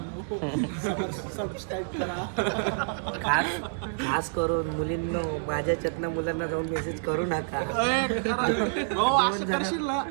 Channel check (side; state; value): left; silent; digital silence